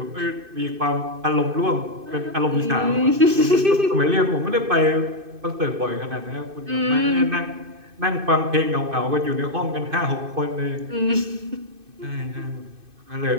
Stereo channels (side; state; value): left; late; 2.5 ms